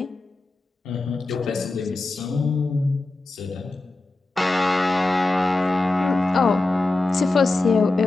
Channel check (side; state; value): right; quieter; 3.0 dB